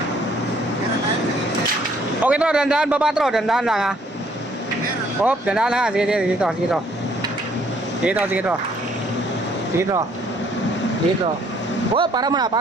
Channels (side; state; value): both; normal; correlation 0.64